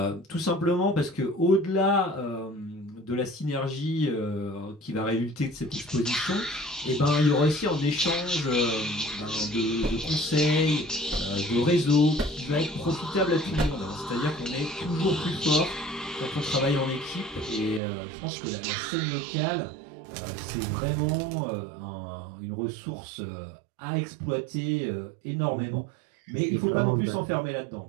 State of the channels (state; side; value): drops out; left; at 17.8 s